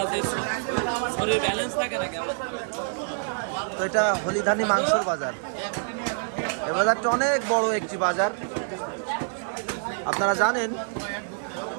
শরীর ব্যালেন্স থাকে না কেমন। তো এটা হলিধানি মাংসর বাজার। এই বাজারটা অনেক বড় একটি বাজার। আপনারা জানেন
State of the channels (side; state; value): left; silent; 61 dB below the other